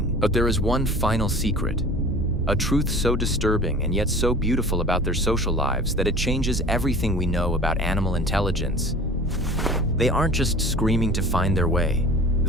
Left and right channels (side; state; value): right; noise; hum, 12 dB below the sound